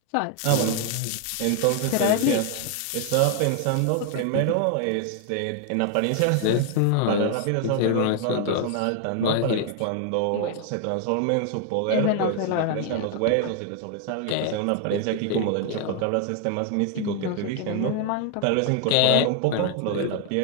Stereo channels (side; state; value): both; different; correlation 0.00